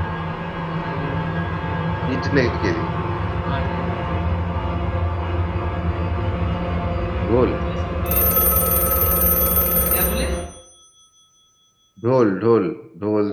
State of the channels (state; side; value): identical; both; correlation 1.00